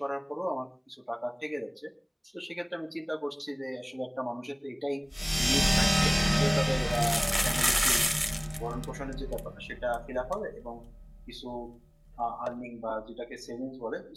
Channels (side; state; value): both; identical; correlation 1.00